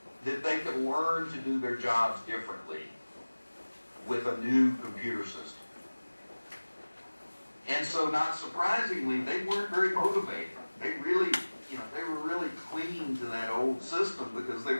that they could learn to do their jobs differently with a new computer system. And so, not surprisingly, they weren't very motivated. They really, they were really clinging to that old system because they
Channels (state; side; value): inverted; both; correlation -1.00